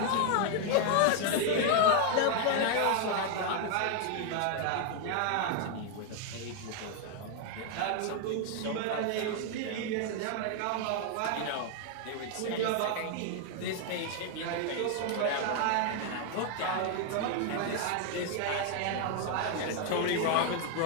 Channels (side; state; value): both; different; correlation 0.00